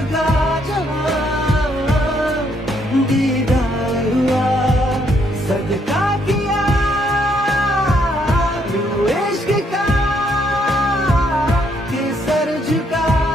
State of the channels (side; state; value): both; normal; correlation 0.72